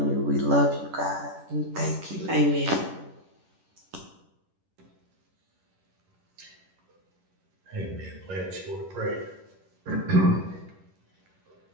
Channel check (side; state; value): left; late; 11 ms